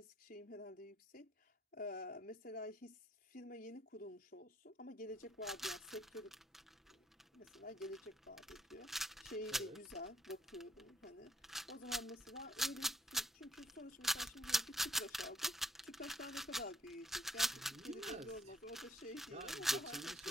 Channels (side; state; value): both; normal; correlation 0.65